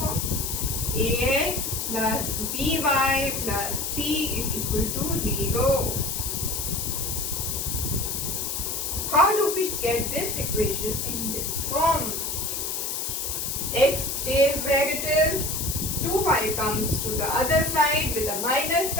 Ax plus by plus c is equal to 0. How do we get this equation in this form? X stays where it is, 2y comes to the other side with a minus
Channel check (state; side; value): noise; left; hiss, 2 dB below the sound